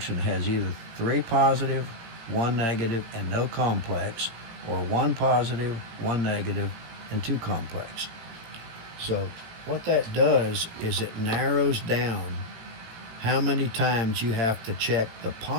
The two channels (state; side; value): late; left; 18 ms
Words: has either 3 positive, 1 negative, and no complex, or 1 positive, 1 negative, and 2 complex. So what that does is it narrows down how many times you have to check the